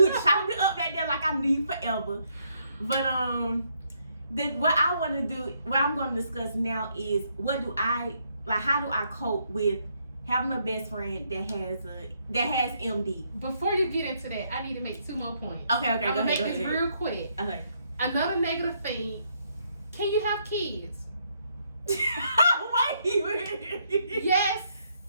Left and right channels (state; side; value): inverted; both; correlation -0.73